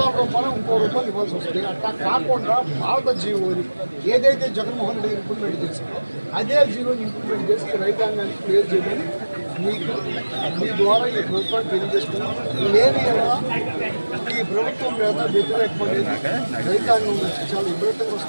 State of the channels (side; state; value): both; inverted; correlation -1.00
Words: ఇంకో రూపాయలు ఇవ్వాల్సి వస్తుంది. అట్లా కాకుండా భారత జీవోని ఏదైతే జగన్మోహన్ రెడ్డి ఇంప్లిమెంట్ చేసిందో అదే జీవోని ఇంప్లిమెంట్ చేసి రైతాంగానికి క్లియర్ చేయమని మీకు మీ ద్వారా ఈ ప్రభుత్వాన్ని తెలియజేస్తున్నాం. లేని ఈ ప్రభుత్వం మీద వ్యతిరేకపడేది రైతాంగం నుంచి చాలా విపరీతంగా